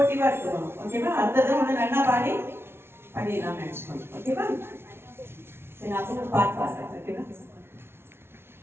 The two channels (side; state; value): left; late; 0.12 ms